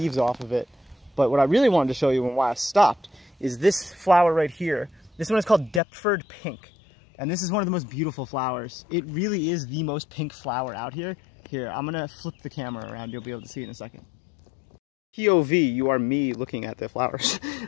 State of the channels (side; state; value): right; drops out; at 5.8 s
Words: off of it. But what I really wanted to show you and why I stopped is this flower right here. This one is called Deptford Pink. And this is one of the most beautiful flowers. It really is the most pink flower out here. Here, I'm gonna flip the camera around. You'll be able to see it in a second. POV, you are me looking at the flowers.